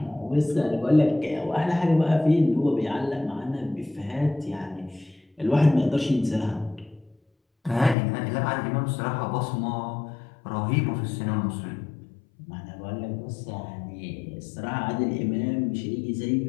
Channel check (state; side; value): drops out; right; at 8.0 s